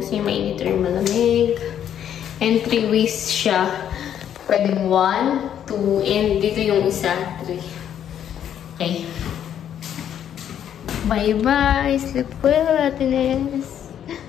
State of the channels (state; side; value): quieter; right; 9.7 dB